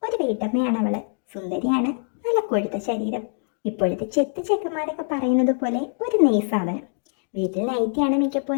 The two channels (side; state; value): right; silent; 63 dB below the other